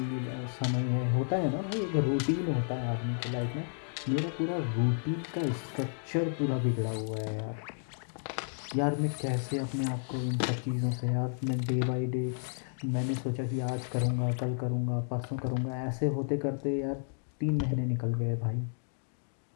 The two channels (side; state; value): right; silent; digital silence